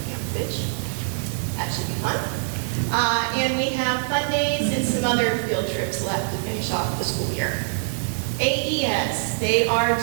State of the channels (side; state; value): left; silent; 60 dB below the other